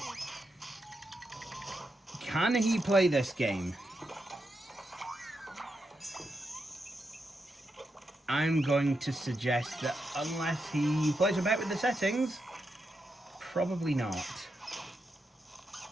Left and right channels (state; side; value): normal; both; correlation 0.85